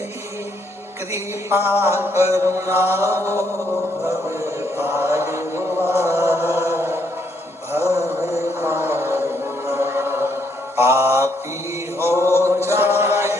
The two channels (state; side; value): normal; both; correlation 0.73